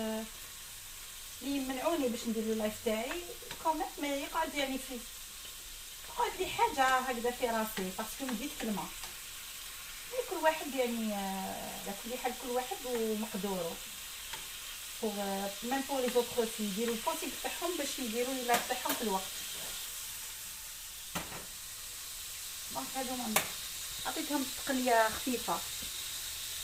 يمنعوني باش ندير لايف تاعي كوميت ما يقعد يعني في يقعد لي حاجه هكذا في راسي باسكو نديت كلمه. كل واحد يعني على كل حال كل واحد ومقدوره. بور ميم بور لي زوطخ في يديروا البوسيبل تاعهم باش يديروا لايف تاعهم في الوقت. دونك هادوما عطيتهم تقليه خفيفه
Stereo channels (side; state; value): both; identical; correlation 1.00